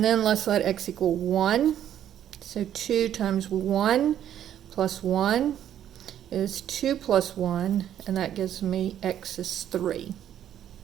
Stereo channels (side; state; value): left; quieter; 10.6 dB